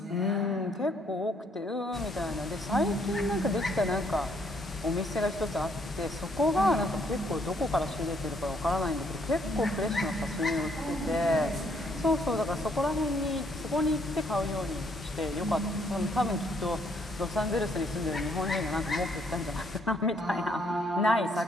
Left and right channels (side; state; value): both; normal; correlation 0.69